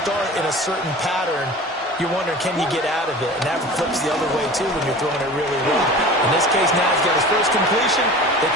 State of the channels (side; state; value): both; normal; correlation 0.38